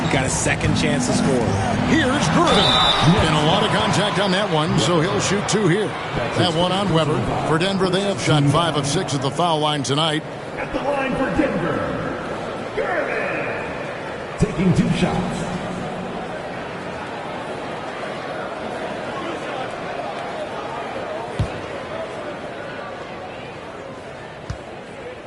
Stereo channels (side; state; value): both; identical; correlation 1.00